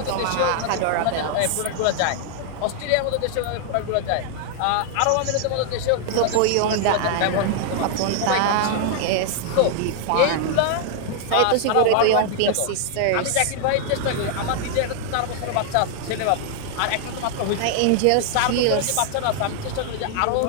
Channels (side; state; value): both; different; correlation 0.00